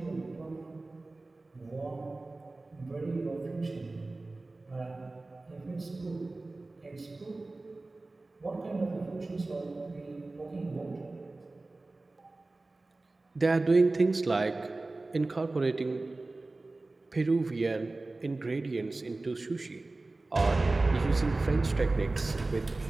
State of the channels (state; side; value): quieter; left; 3.2 dB